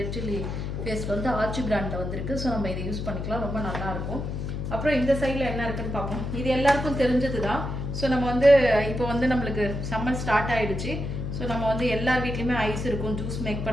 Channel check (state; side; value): noise; left; hum, 4 dB below the sound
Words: சில்லி பேஸ்ட் வந்து ஆச்சி பிராண்டில் வந்துருக்கு. ஸோ நம்ம இதை யூஸ் பண்ணிக்கலாம், ரொம்ப நல்லாயிருக்கும். அப்புறம் இந்த சைடில் என்ன இருக்குன்னு பார்ப்போம். இது எல்லாருக்கும் தெரிஞ்சது தான். ஸோ நம்ம வந்து இப்போ வந்து நம்மளுக்கு சம்மர் ஸ்டார்ட் ஆகிடுச்சு. ஸோ நம்ம வந்து எல்லார் வீட்லேயுமே ஐஸ் இருக்கும், ஜூஸ் மேக்